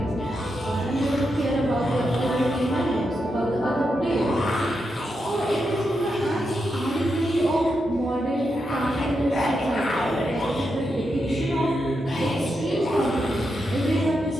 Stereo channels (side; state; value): both; normal; correlation 0.85